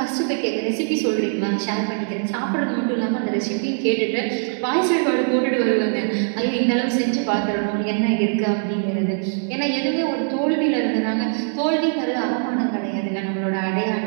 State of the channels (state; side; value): silent; left; 57 dB below the other